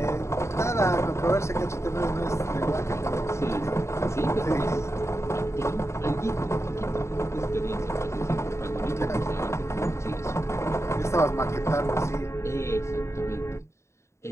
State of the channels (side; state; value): right; late; 0.14 ms